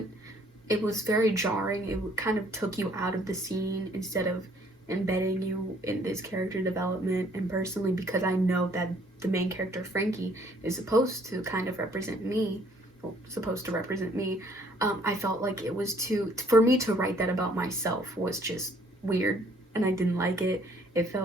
It was very jarring. It kind of took you out of the scene instead of embedding you in this character development. And personally, because I know that the main character Frankie is supposed to represent me, I felt like it was for me to write that about myself was just weird, and I didn't like it. It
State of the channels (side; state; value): both; normal; correlation 0.61